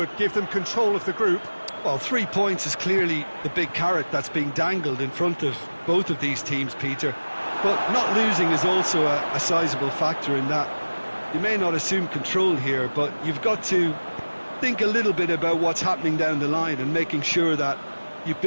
give them control of the group. Well, 3 points is clearly the big carrot that's being dangled in front of both of these teams, Peter. But not losing is also a sizable factor in that. You may not assume control here, but you've got to think a little bit about what's happening down the line and making sure that you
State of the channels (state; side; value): inverted; both; correlation -1.00